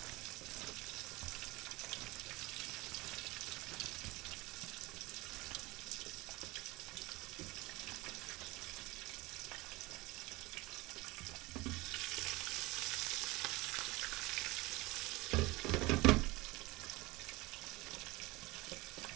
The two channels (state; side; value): quieter; left; 21.9 dB